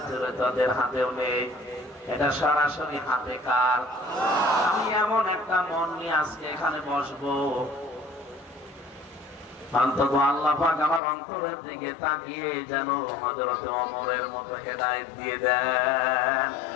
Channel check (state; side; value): drops out; right; at 11.0 s